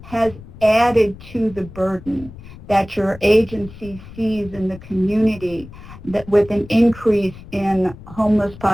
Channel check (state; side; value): noise; left; rumble, 17 dB below the sound